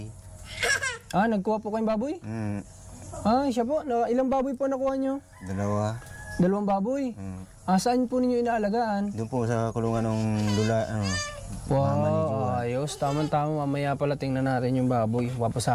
Nagkuha po kayong baboy? Siya po. Ilang baboy po nakuha nyo? 2. 2 baboy? Saan po ninyo inaalagaan? Doon po sa kulungan ng lula, Wow, ayos. Tama-tama, mamaya pala tingnan natin yung baboy.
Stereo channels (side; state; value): both; identical; correlation 1.00